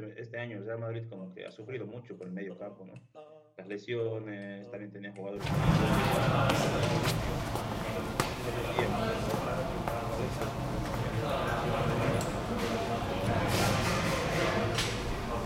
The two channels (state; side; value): identical; both; correlation 1.00